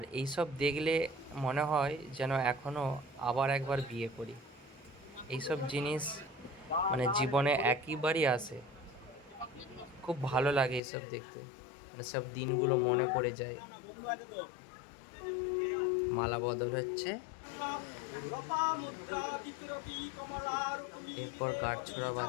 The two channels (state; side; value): drops out; right; at 10.8 s